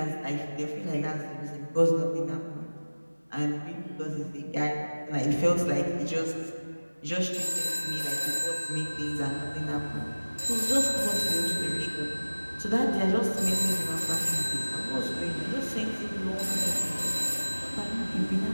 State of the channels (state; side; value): inverted; both; correlation -1.00